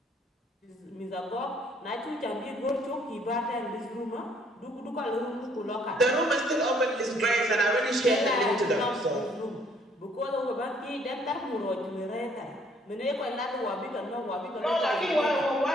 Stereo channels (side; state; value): both; normal; correlation 0.63